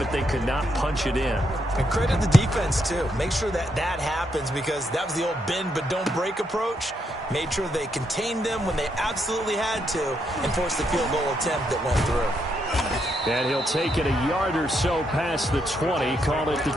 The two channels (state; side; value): normal; both; correlation 0.78